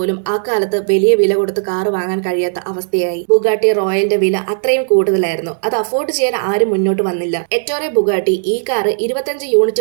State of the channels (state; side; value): silent; left; digital silence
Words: ആ കാലത്ത് വലിയ വില കൊടുത്ത് കാർ വാങ്ങാൻ കഴിയാത്ത അവസ്ഥയായി. ബുഗാട്ടി റോയലിന്റെ വില അത്രയും കൂടുതലായിരുന്നു. അത് അഫോർഡ് ചെയ്യാൻ ആരും മുന്നോട്ട് വന്നില്ല. എറ്റോറെ ബുഗാട്ടി ഈ കാർ 25